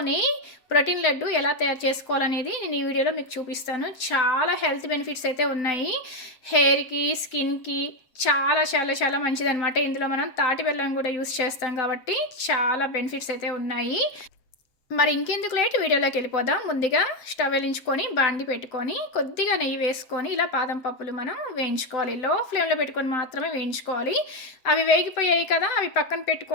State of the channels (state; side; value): late; right; 7.8 ms